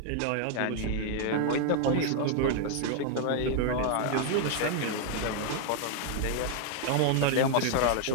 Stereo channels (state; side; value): different; both; correlation 0.00